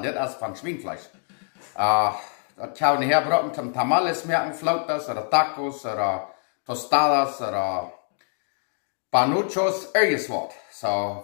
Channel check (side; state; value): right; silent; 56 dB below the other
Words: dit is van Schweinfleisch. Dat zou niet herbroken, zum tamales merken, flautas, oder tacos, oder tostadas, oder panuchos, ergens wat. So,